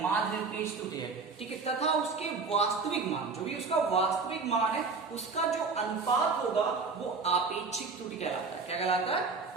माध्य निरपेक्ष त्रुटि है, ठीक है, तथा उसके वास्तविक मान, जो भी उसका वास्तविक मान है उसका जो अनुपात होगा वो आपेक्षिक त्रुटि कहलाता है। क्या कहलाता है?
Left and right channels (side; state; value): left; quieter; 4.5 dB